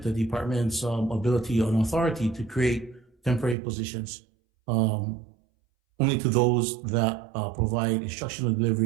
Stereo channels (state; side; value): drops out; left; at 3.6 s